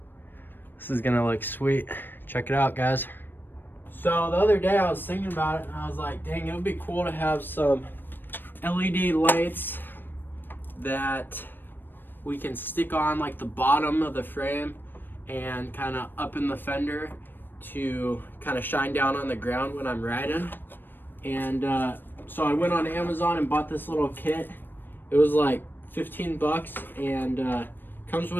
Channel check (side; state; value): right; late; 0.094 ms